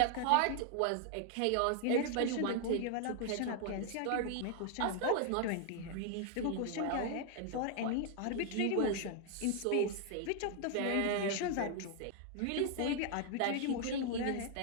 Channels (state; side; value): different; both; correlation 0.00